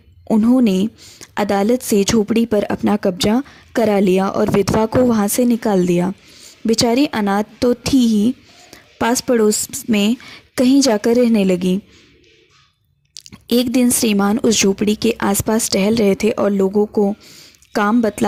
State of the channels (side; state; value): both; identical; correlation 1.00